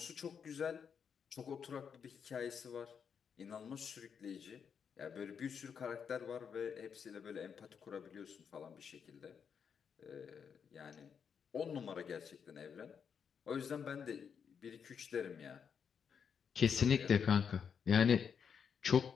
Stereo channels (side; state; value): right; quieter; 7.0 dB